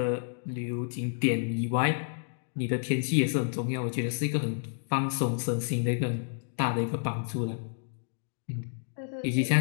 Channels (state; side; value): silent; right; digital silence